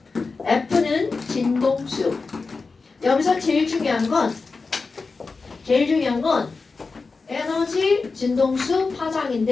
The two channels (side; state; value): right; quieter; 4.2 dB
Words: F는 진동수. 여기서 제일 중요한 건 에너지, 진동수,